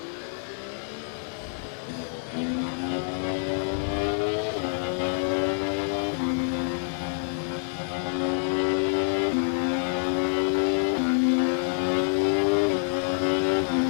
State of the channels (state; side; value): silent; right; 60 dB below the other